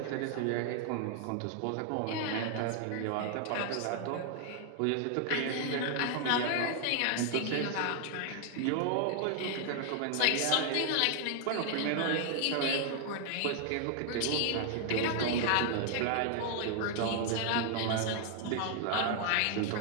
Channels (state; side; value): different; both; correlation 0.00